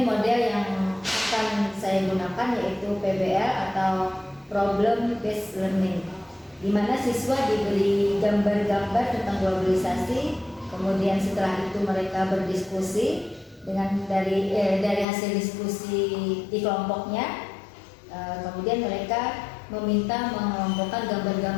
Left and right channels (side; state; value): right; drops out; at 15.1 s